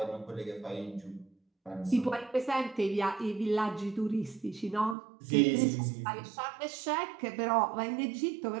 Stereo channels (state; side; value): drops out; left; at 5.0 s